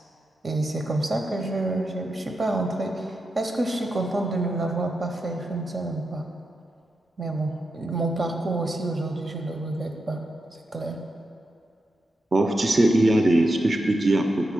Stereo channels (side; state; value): both; normal; correlation 0.87